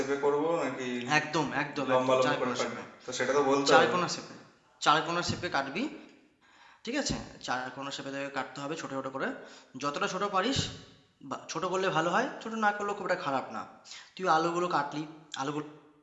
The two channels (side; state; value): both; identical; correlation 1.00